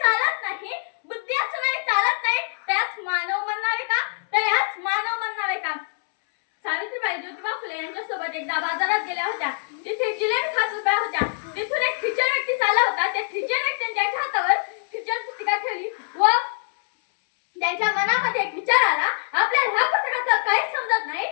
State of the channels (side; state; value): right; silent; 63 dB below the other